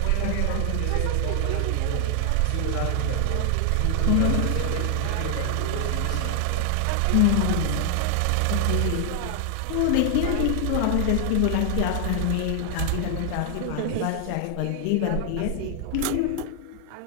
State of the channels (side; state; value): both; different; correlation 0.00